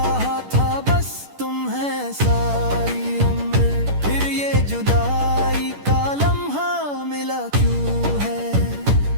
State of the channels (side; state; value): left; late; 10 ms